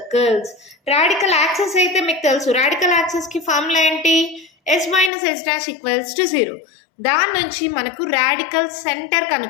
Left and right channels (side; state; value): right; drops out; at 5.1 s